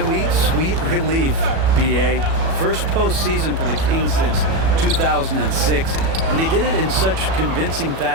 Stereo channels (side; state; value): left; late; 37 ms